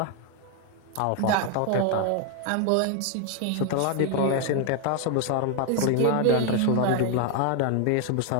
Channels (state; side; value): different; both; correlation 0.01